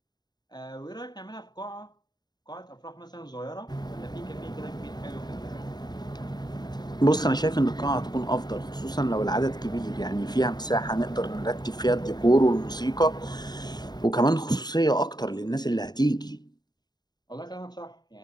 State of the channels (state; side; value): late; right; 0.20 ms